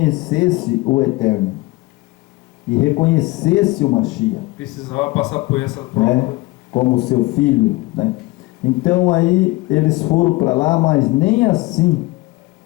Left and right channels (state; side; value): quieter; right; 21.0 dB